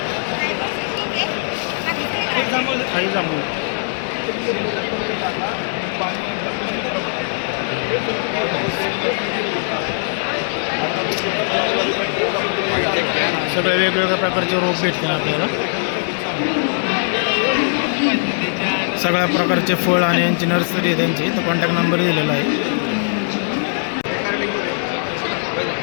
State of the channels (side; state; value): right; silent; digital silence